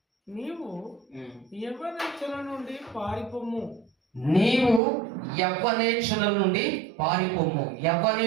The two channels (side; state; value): left; drops out; at 4.8 s